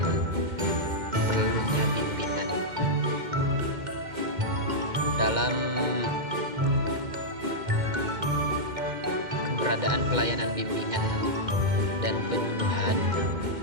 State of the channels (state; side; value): late; left; 2.1 ms